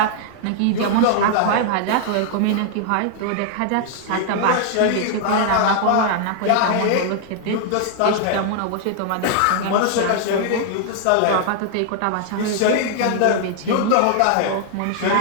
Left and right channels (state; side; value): different; both; correlation 0.00